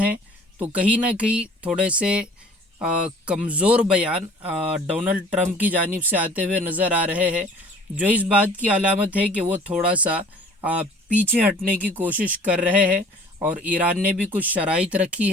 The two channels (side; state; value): both; normal; correlation 0.50